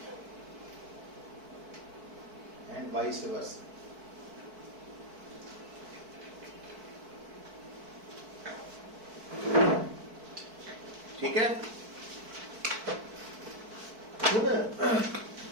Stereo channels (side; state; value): left; late; 4.5 ms